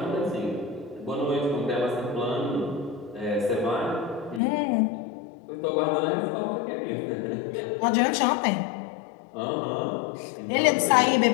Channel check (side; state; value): right; drops out; at 4.4 s